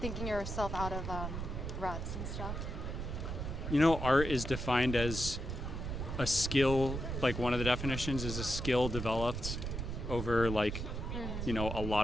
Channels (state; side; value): noise; right; rumble, 4 dB below the sound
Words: thinking yourself out of ruts and stuff. You know, art is defined as a skill, like one of the definitions is a skill developed over like, you know, a